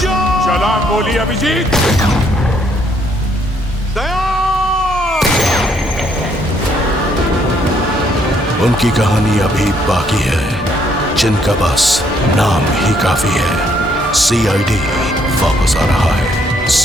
जाओ! चला गोली अभिजीत। दया! उनकी कहानी अभी बाकी है, जिनका बस नाम ही काफी है। CID वापस आ रहा है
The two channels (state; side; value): normal; both; correlation 0.69